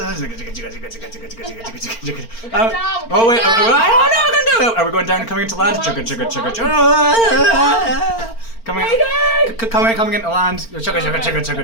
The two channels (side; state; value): right; late; 4.4 ms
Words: Oh wait, I don't know. Are we going down and coming into land? Coming into land.